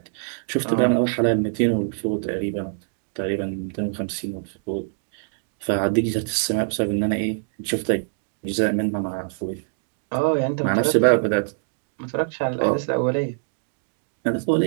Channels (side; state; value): left; silent; digital silence